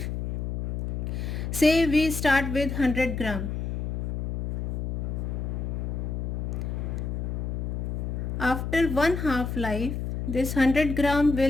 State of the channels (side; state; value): left; noise; hum, 2 dB below the sound